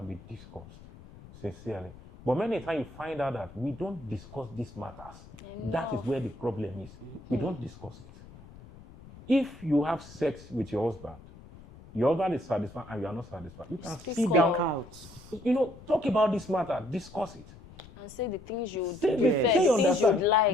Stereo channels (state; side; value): noise; left; rumble, 19 dB below the sound